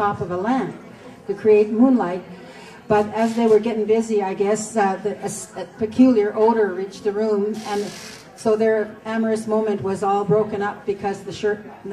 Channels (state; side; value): identical; both; correlation 1.00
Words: of a lamp to create moonlight. But as they were getting busy, I guess a peculiar odor reached the room, and so their amorous moment was all broken up because the shirt,